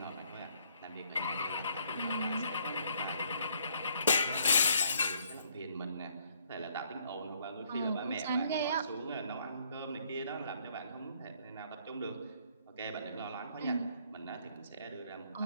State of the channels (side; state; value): both; inverted; correlation -0.66